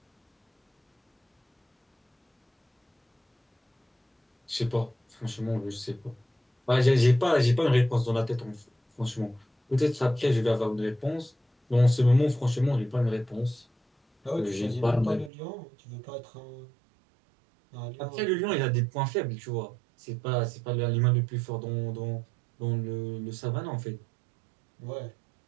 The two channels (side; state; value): left; drops out; at 15.3 s